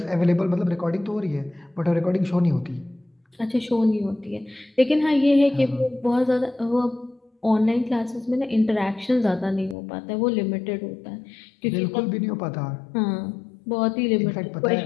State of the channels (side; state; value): right; drops out; at 9.8 s